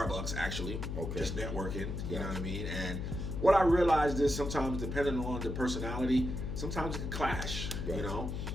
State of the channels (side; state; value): left; noise; hum, 4 dB below the sound